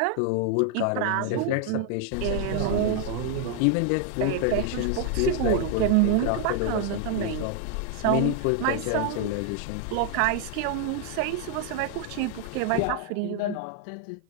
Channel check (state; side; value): different; both; correlation 0.00